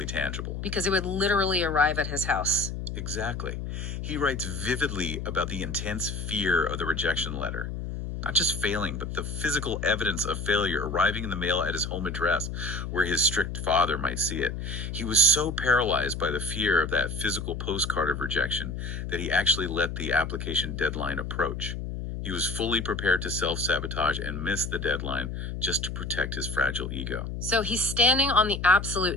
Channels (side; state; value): left; noise; hum, 5 dB below the sound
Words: tangible. Because it would literally arrive at his house. Exactly. He writes vividly about the intense fear of the rejection letter. Not just failing, but the physical evidence of failure arriving in the mail at his home address, where his strict father might see it. He was so paralyzed by the fear of that physical postcard of rejection that he actually let the application deadline approach. He was fully prepared to self sabotage and miss the deadline just to protect his fragile ego. So he's standing on the absolute